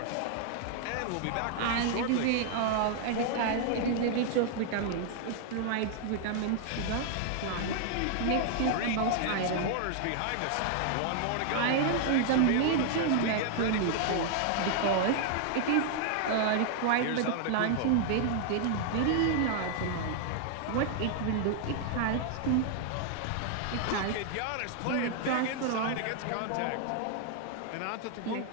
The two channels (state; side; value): different; both; correlation 0.00